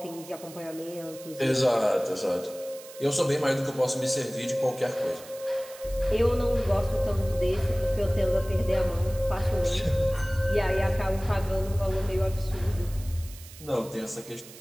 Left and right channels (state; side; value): noise; right; hiss, 18 dB below the sound